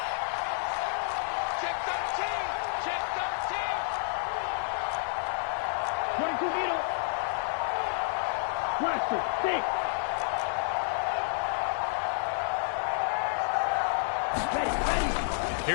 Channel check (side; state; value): right; silent; 58 dB below the other